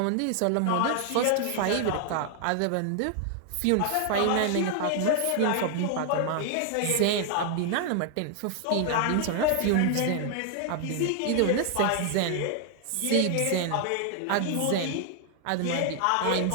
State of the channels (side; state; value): both; different; correlation 0.00